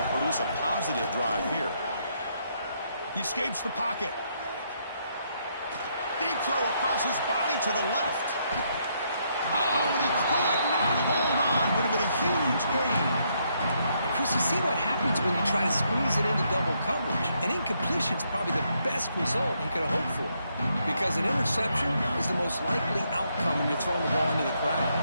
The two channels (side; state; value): both; inverted; correlation -0.75